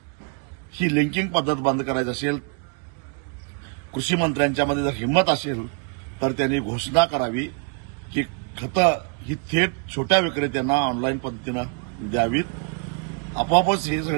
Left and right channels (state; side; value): quieter; left; 36.4 dB